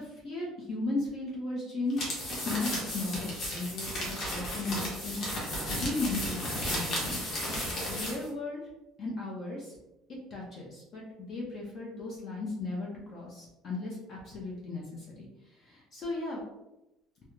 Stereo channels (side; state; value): both; normal; correlation 0.60